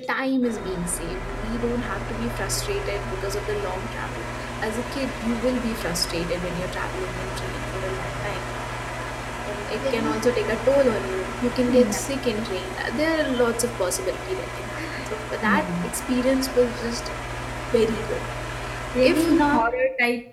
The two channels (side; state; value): both; identical; correlation 1.00